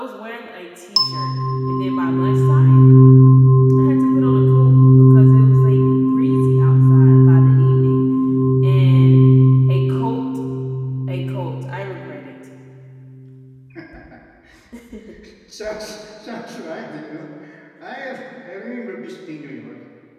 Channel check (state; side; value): identical; both; correlation 1.00